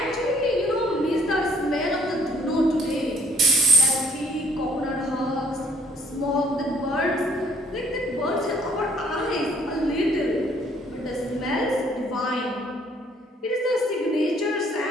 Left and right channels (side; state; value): both; normal; correlation 0.64